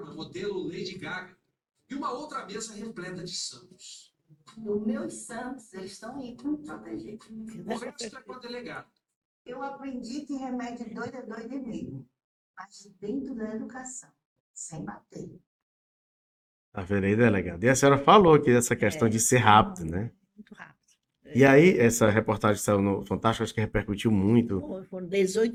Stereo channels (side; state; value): both; identical; correlation 1.00